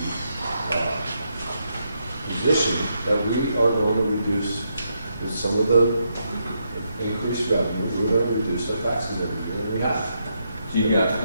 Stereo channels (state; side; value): inverted; both; correlation -0.80